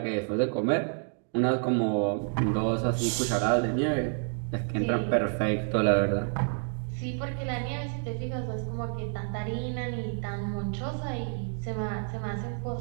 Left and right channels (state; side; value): silent; left; 58 dB below the other